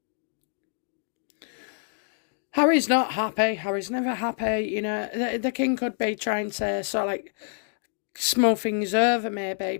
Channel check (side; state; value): right; silent; 60 dB below the other